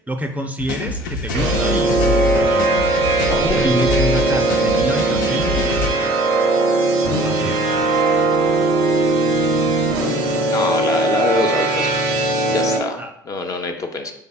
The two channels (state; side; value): normal; both; correlation 0.50